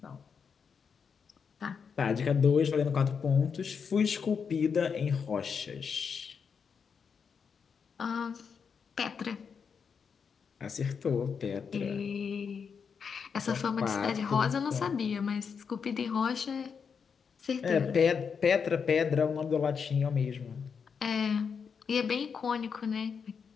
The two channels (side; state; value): right; quieter; 6.3 dB